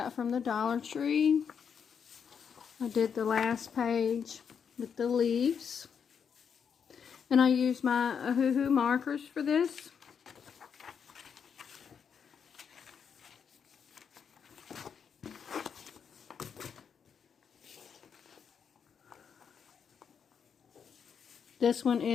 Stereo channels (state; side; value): quieter; right; 7.0 dB